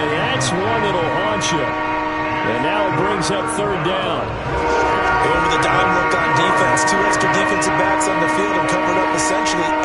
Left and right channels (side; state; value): both; identical; correlation 1.00